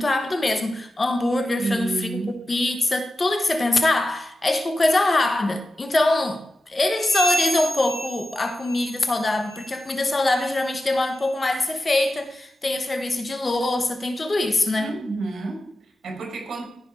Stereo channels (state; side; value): normal; both; correlation 0.92